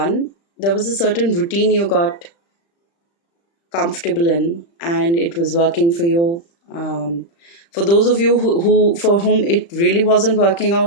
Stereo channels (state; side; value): late; right; 35 ms